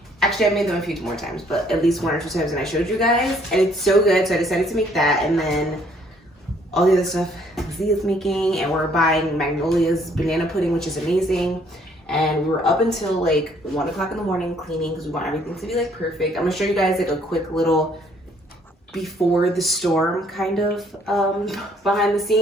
Actually, I've made them a few more times, but at least 1 or 2 times, and I showed you guys, and it's so good, so I decided to make that, and then all the other stuff Zia's making, and we're buying Magnolia's banana pudding, which is amazing, and we were up until like 1 o'clock in the morning cleaning because we want everything to be like perfect. I'm gonna show you guys like a quick little before the storm kind of behind the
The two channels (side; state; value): both; normal; correlation 0.64